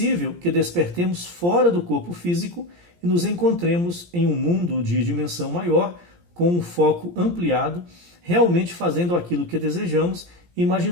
que despertemos fora do corpo físico e nos encontremos em um mundo de dimensão maior, com um foco ampliado, realmente fazendo aquilo que desejamos e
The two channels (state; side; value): late; left; 17 ms